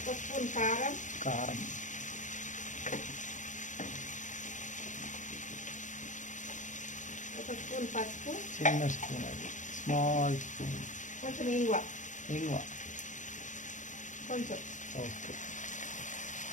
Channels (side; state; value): right; late; 0.36 ms